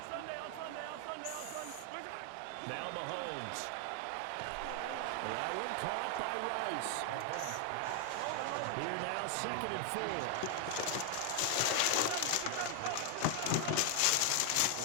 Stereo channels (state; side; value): different; both; correlation 0.00